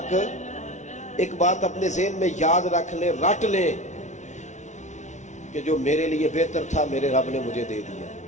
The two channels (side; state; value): right; late; 0.34 ms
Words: ایک بات اپنے ذہن میں یاد رکھ لیں، رٹ لیں کہ جو میرے لیے بہتر تھا میرے رب نے مجھے دے دیا،